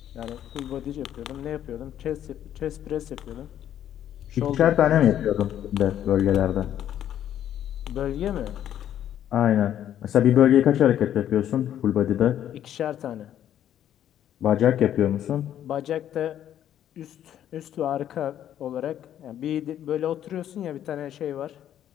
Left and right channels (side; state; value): right; quieter; 10.8 dB